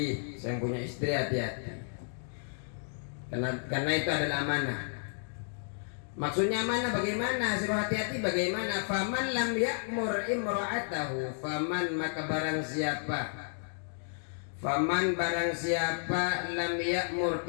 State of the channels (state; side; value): silent; right; digital silence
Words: saya punya istri, hati-hati. Karena itu adalah amanah. Maksudnya amanah bagaimana? Suruh hati-hati bagaimana? Faman lam ya'mur imra'atahu, faman maka barang siapa, faman barang siapa lam ya'mur